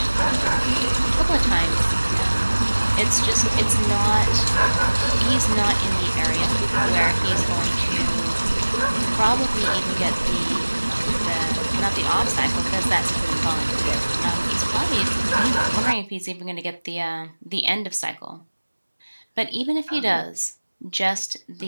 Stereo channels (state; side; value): inverted; both; correlation -1.00